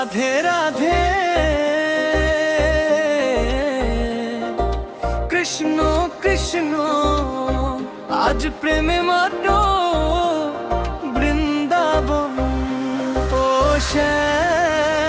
রাধে কৃষ্ণ কৃষ্ণ আজ প্রেমে মাতো বৃন্দাবন। ও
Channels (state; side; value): identical; both; correlation 1.00